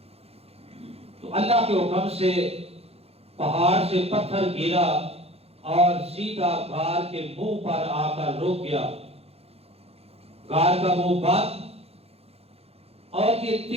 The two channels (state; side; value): late; left; 0.29 ms